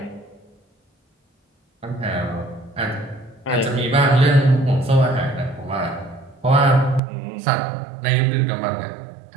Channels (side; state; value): left; drops out; at 7.0 s